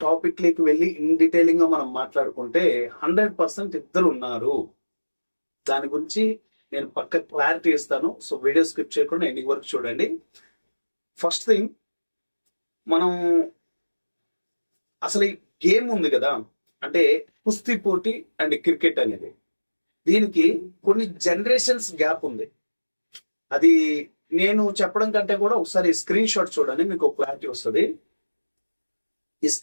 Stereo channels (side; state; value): both; inverted; correlation -1.00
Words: టాపిక్ లోకి వెళ్ళి ఇన్ డీటెయిలింగ్ గా మనం మాట్లాడుకుంటే 100% ఇద్దరు ఉన్నారు. దాని గురించి నేను పక్క క్లారిటీ ఇస్తాను. సో వీడియో స్కిప్ చేయకుండా ఎండింగ్ వరకు చూడండి. ఫస్ట్ థింగ్, మనం అసలు ఈ గేమ్ ఉంది కదా, అంటే కుస్తీ పోటీ అండ్ క్రికెట్ అనేది, దీనికి కొన్ని జనరేషన్స్ గ్యాప్ ఉంది. అది నేను చెప్పడం కంటే కూడా ఒకసారి స్క్రీన్ షాట్ చూడండి, మీకు క్లారిటీ వస్తుంది. ఈ